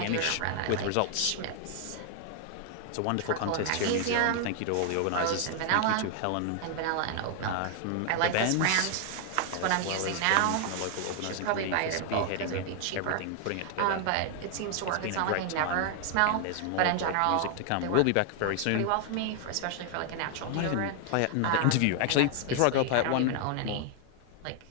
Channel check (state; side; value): different; both; correlation 0.00